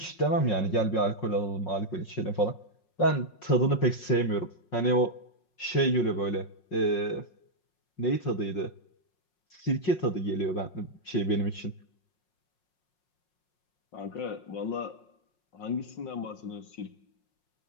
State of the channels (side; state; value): right; late; 5.5 ms